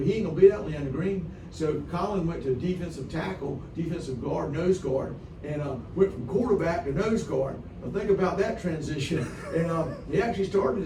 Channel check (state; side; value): identical; both; correlation 1.00